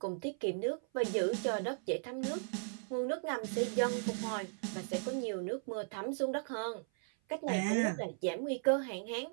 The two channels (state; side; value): silent; left; 53 dB below the other